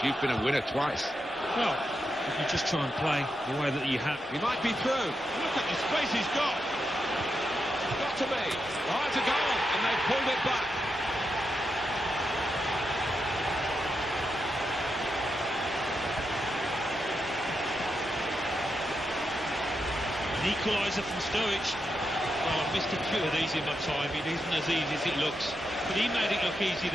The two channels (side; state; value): both; normal; correlation 0.85